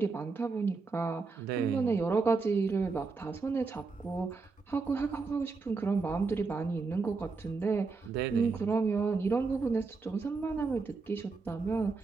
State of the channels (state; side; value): quieter; left; 4.3 dB